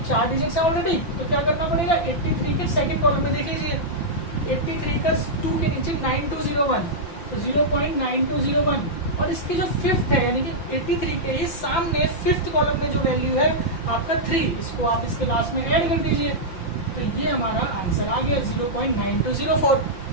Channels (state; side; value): late; right; 5.8 ms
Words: 4 डिजिट है ऑलरेडी, तो क्या करना पड़ेगा, 83 के सेकंड कॉलम में देख लीजिए, 83 का 2 के नीचे 9201, तो 0.9201, और इसकी जो फिफ्थ है यानी कि 83 के ही सामने फिफ्थ कॉलम में जो वैल्यू है आपका 3, इसको आप इसके लास्ट में ऐड कर दीजिए, तो ये हमारा आंसर आ गया 0.9204।